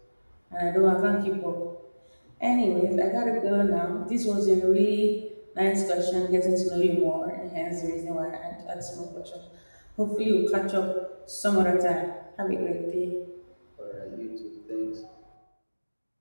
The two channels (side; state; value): both; inverted; correlation -1.00